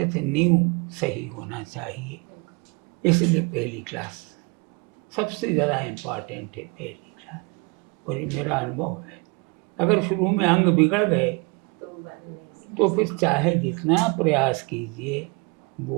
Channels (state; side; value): quieter; left; 29.0 dB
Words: थे न्यू सही होना चाहिए, इसलिए पहली क्लास सबसे ज़्यादा इम्पॉर्टेंट है, पहली क्लास। और ये मेरा अनुभव है, अगर शुरू में अंग बिगड़ गए तो फिर चाहे जितना प्रयास कीजिए